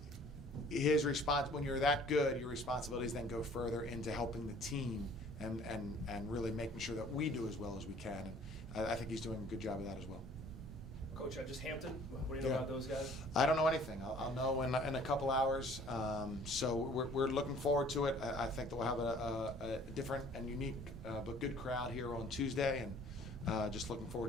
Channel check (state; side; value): normal; both; correlation 0.53